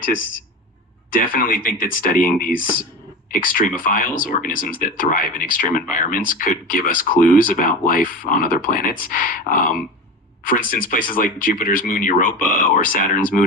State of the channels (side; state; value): both; normal; correlation 0.28